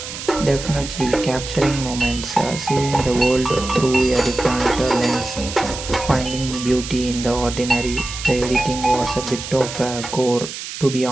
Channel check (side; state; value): right; noise; hiss, 9 dB below the sound